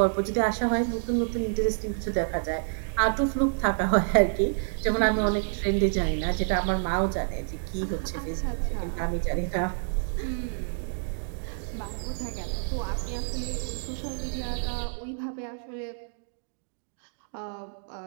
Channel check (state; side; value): silent; left; digital silence